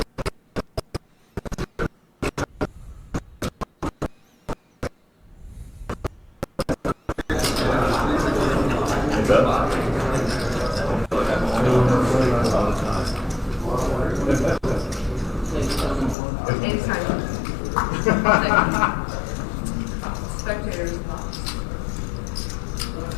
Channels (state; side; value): drops out; right; at 16.2 s